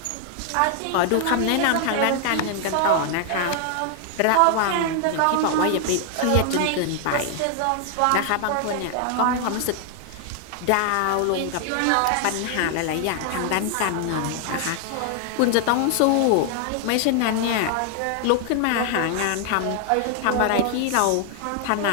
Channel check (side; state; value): both; different; correlation 0.00